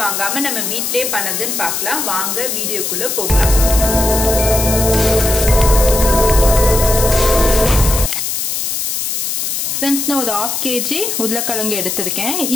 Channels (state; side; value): noise; left; hiss, 2 dB below the sound